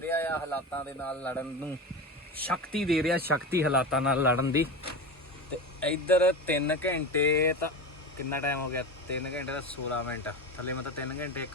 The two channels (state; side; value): normal; both; correlation 0.24